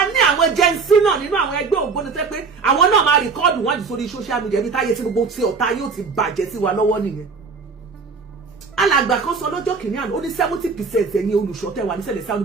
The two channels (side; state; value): left; quieter; 4.9 dB